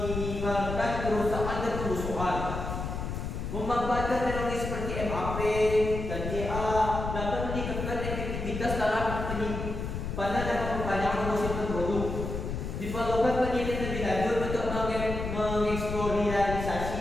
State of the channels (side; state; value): left; noise; rumble, 5 dB below the sound